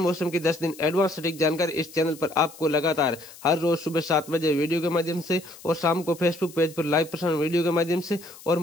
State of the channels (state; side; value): noise; left; hiss, 19 dB below the sound